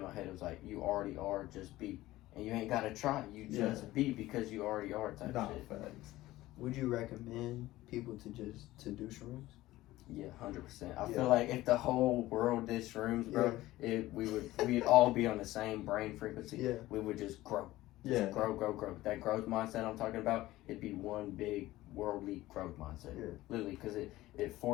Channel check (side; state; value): right; quieter; 16.9 dB